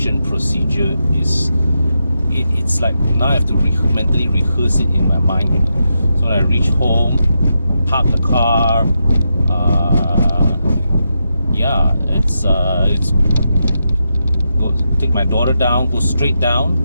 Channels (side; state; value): both; inverted; correlation -0.86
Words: procedure is, it's like now I have to mentally rehearse it in my mind, you know. So when I reach home, park the car, yeah, it's go take my daughter down, go straight down,